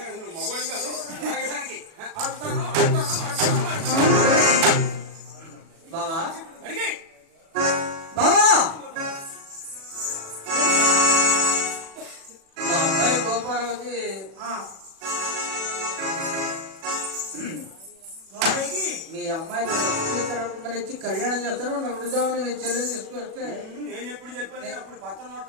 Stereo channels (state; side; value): late; left; 36 ms